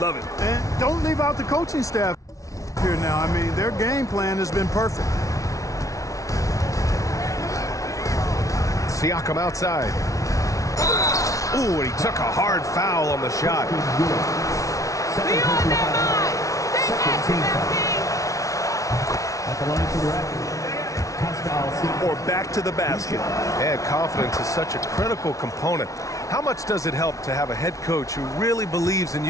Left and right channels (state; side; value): late; right; 0.16 ms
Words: it. And don't leave out the coaching staff here now. I mean, their game plan has been perfect. Siakam outside. Ooh, and he took a hard foul on the shot. At the line for the Raptors. Or back to the basket. And confidence is such a critical component. How much does it help to have a head coach who really believes in